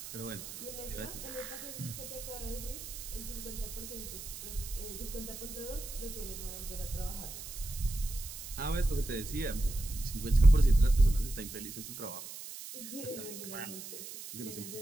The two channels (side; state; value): right; noise; hiss, 10 dB below the sound